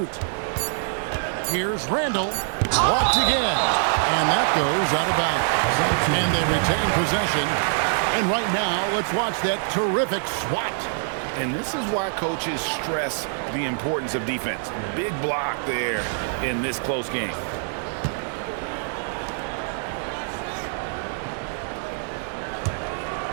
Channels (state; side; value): silent; left; 62 dB below the other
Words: Here's Randall. Blocked again. And that goes out of bounds. And they retain possession. And right now, let's watch that terrific swat. And this is why coaches stress the importance of defense. Big block there in this close game.